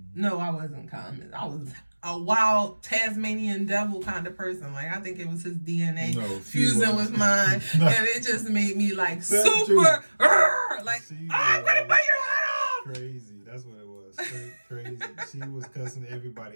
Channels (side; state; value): both; inverted; correlation -1.00